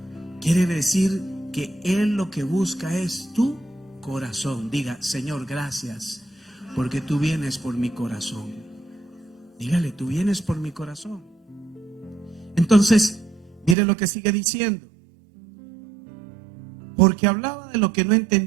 Quiere decir que Él lo que busca es tu corazón. Diga, Señor, gracias, porque tú vienes por mi corazón. Dígale, tú vienes por mi corazón. Entonces, mire lo que sigue diciendo. Porque hablaba de lo que no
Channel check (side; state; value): left; drops out; at 13.8 s